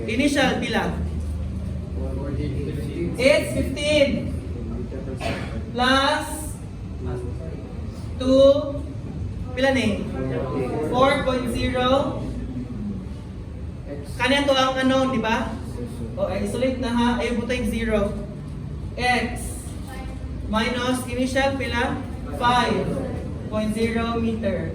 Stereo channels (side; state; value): both; identical; correlation 1.00